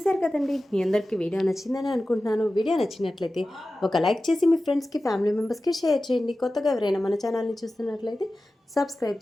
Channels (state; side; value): normal; both; correlation 0.95